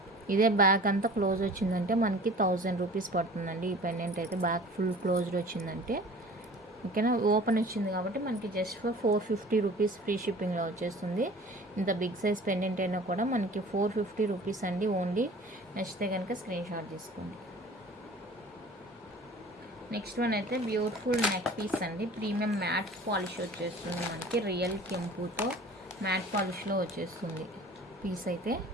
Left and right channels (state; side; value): normal; both; correlation 0.44